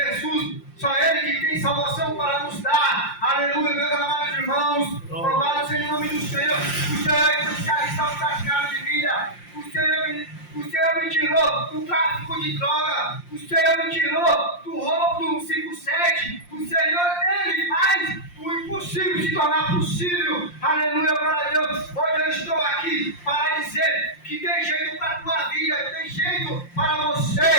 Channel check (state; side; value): late; right; 5.7 ms